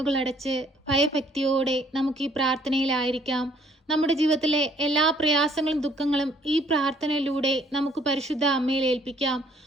ഭയഭക്തിയോടെ നമുക്ക് ഈ പ്രാർത്ഥനയിലായിരിക്കാം. നമ്മുടെ ജീവിതത്തിലെ എല്ലാ പ്രയാസങ്ങളും ദുഃഖങ്ങളും ഈ പ്രാർത്ഥനയിലൂടെ നമുക്ക് പരിശുദ്ധ അമ്മയിൽ ഏൽപ്പിക്കാം.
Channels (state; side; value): normal; both; correlation 0.62